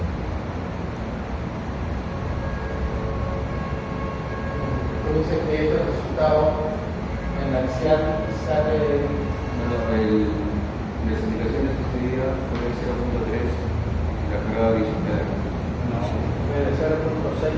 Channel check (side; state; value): both; identical; correlation 1.00